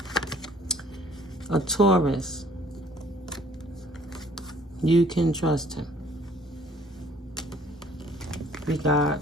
a Taurus. You can trust him. We got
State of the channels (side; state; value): both; normal; correlation 0.57